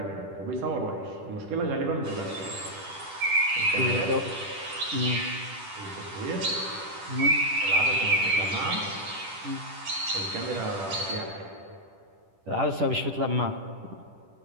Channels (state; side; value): late; left; 10 ms